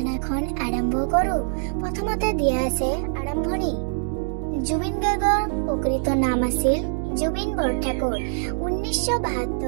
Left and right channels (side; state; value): left; silent; digital silence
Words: আৰম্ভ কৰো। প্ৰথমতে দিয়া আছে আৰম্ভণি। জুবিন গাৰ্গৰ প্ৰকৃত নাম আছিল জুবিন বৰঠাকুৰ।